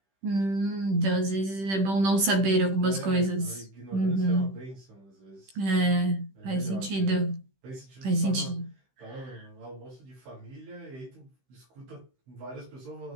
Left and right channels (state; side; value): late; left; 15 ms